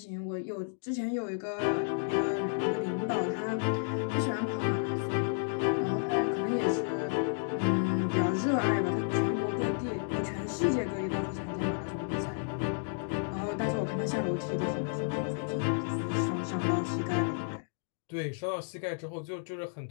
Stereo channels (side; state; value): right; silent; digital silence